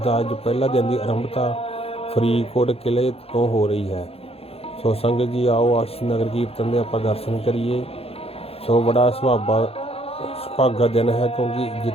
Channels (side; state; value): right; late; 0.29 ms